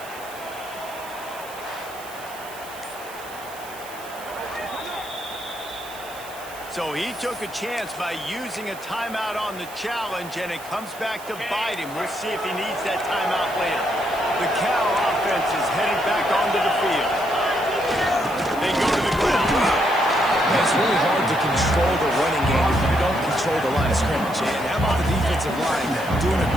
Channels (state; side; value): noise; right; hiss, 17 dB below the sound